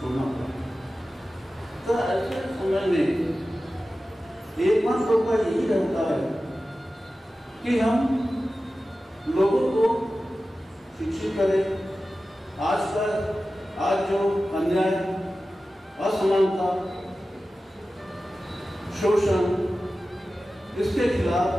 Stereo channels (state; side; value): normal; both; correlation 0.94